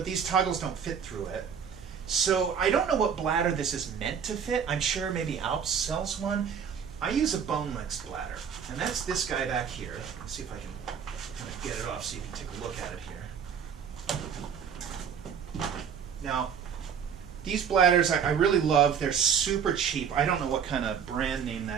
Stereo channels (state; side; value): quieter; left; 7.4 dB